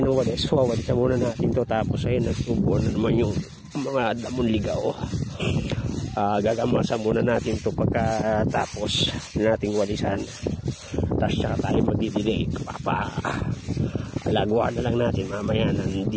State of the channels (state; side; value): identical; both; correlation 1.00